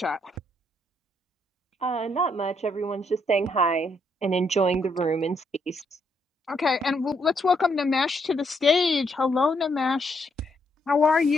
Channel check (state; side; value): normal; both; correlation 0.74